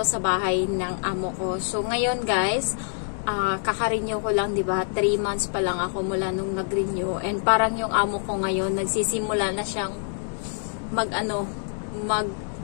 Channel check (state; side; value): silent; right; digital silence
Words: sa bahay ng amo ko. So ngayon guys, kaka-renew ko lang, 'di ba? 3 months pa lang ako mula nung nag-renew, and parang yung amo ko ngayon nagsisimula na siyang